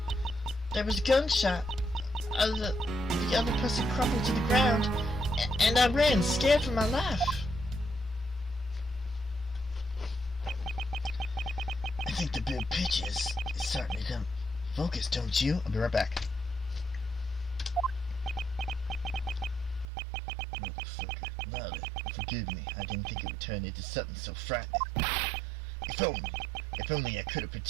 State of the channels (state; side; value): drops out; left; at 19.9 s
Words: There was a gunshot. The other person crumpled to the ground, and I ran, scared for my life. I think the big picture is starting to come focus, don't you? I'll be right back. Motherfucker. Lolly, forgive me. I didn't think it would turn into something so frightening. If only I could have